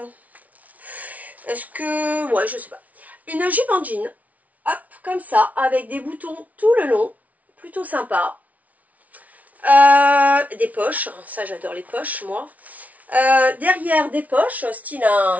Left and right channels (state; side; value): late; left; 0.071 ms